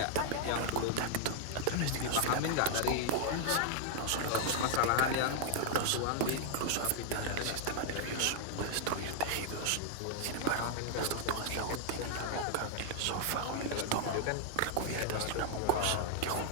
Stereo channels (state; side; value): different; both; correlation -0.01